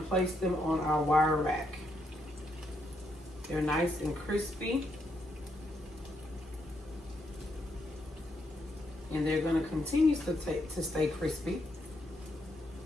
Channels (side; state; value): both; normal; correlation 0.78